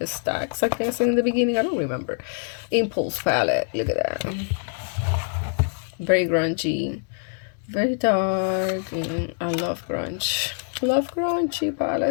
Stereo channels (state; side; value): silent; right; digital silence